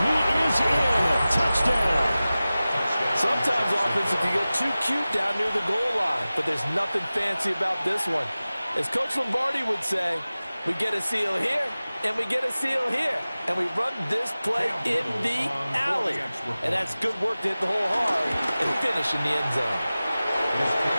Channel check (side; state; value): both; inverted; correlation -0.97